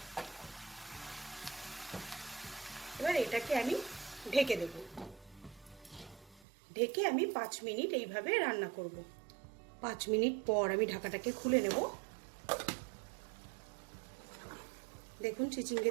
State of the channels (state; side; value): drops out; left; at 6.5 s